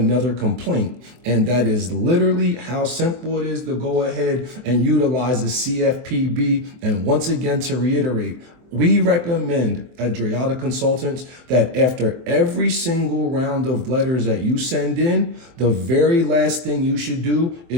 complaint. And that is literally how simple it is to go ahead and utilize the CFPB. And once again, to reiterate, we recommend at Drayata Consultants that after every single round of letters that you send in, the very last thing you should do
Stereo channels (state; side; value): late; left; 24 ms